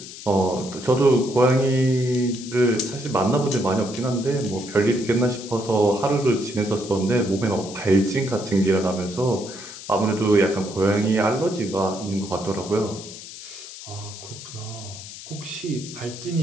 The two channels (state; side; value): noise; left; hiss, 13 dB below the sound